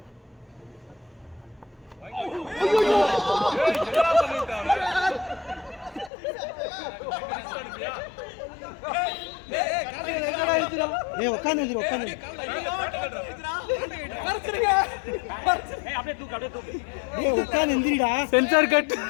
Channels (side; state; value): right; drops out; at 6.1 s